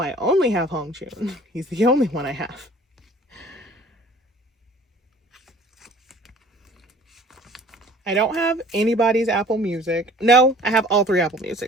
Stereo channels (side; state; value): both; normal; correlation 0.50